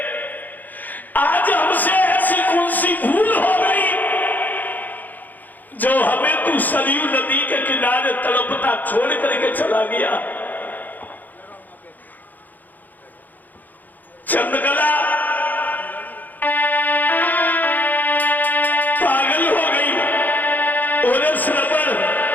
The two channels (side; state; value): right; late; 0.084 ms